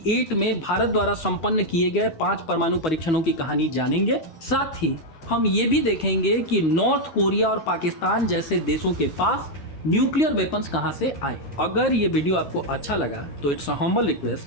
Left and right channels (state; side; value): late; right; 12 ms